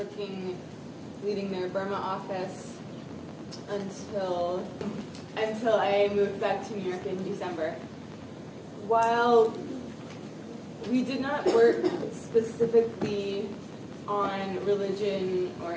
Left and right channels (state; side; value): identical; both; correlation 1.00